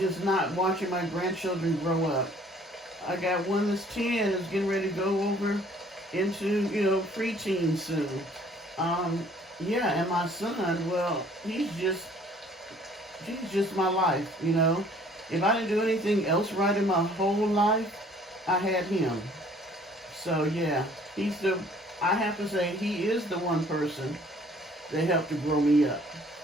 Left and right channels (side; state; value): both; normal; correlation 0.57